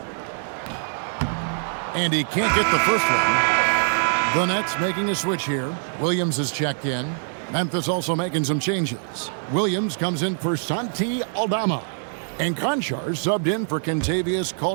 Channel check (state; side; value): silent; left; 63 dB below the other